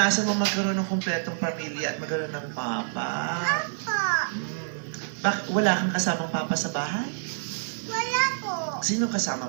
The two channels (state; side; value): silent; left; digital silence